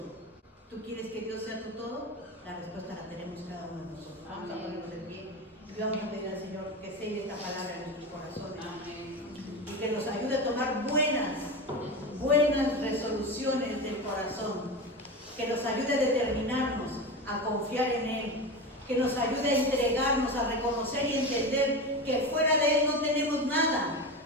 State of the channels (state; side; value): normal; both; correlation 0.24